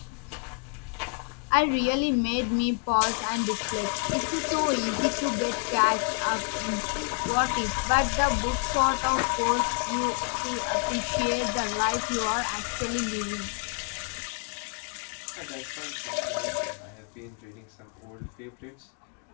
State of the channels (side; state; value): right; quieter; 37.8 dB